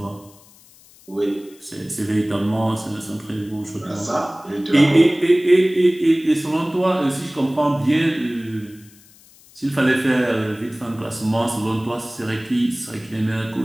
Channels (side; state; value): left; noise; hiss, 26 dB below the sound